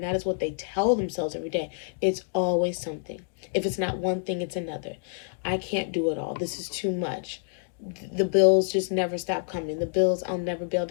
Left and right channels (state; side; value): silent; right; digital silence